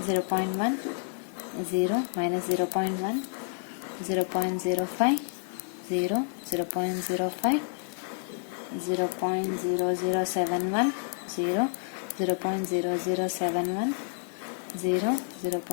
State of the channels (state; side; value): silent; right; digital silence